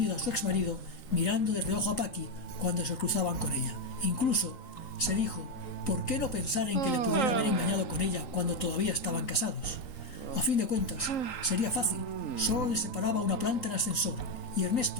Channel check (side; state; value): right; late; 3.8 ms